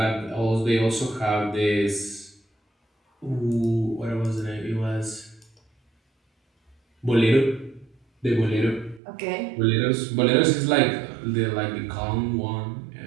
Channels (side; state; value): left; drops out; at 9.0 s